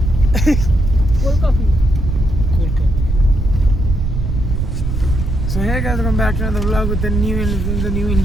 Cold coffee. So hey guys, welcome back to another vlog with the new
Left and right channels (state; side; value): noise; right; rumble, 2 dB below the sound